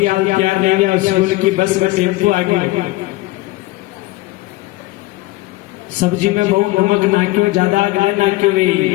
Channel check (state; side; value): quieter; right; 19.6 dB